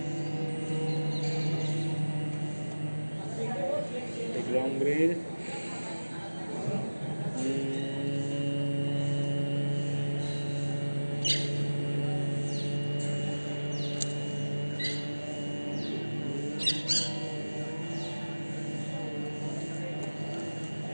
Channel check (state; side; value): inverted; both; correlation -1.00